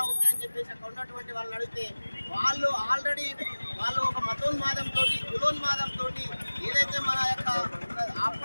ఉంటాయని చెప్పేసి అక్కడ ఉన్నటువంటి వాళ్ళని అడిగితే వాళ్ళు ఆల్రెడీ వాళ్ళు ఒక మతోన్మాదంతో కులోన్మాదంతో ఏదైతే మన యొక్క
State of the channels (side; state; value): both; inverted; correlation -1.00